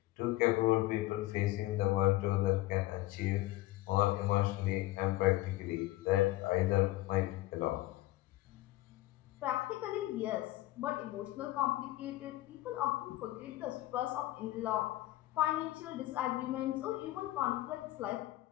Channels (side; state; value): right; quieter; 17.2 dB